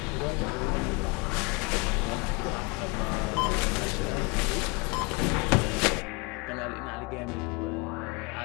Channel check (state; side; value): quieter; right; 28.8 dB